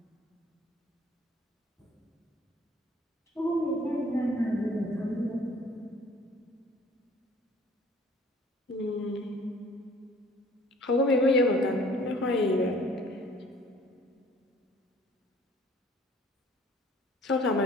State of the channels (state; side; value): normal; both; correlation 0.54